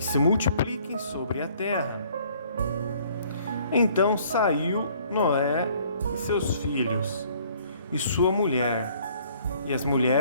se multipliquem sobre a terra. Então saiu Noé e seus filhos, e sua mulher, e as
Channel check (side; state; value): both; inverted; correlation -0.59